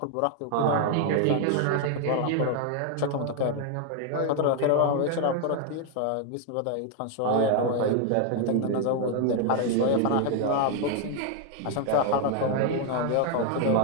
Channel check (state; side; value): different; both; correlation 0.00